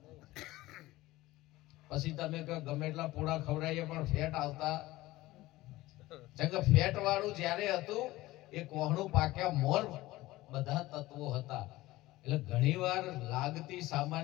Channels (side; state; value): right; quieter; 18.0 dB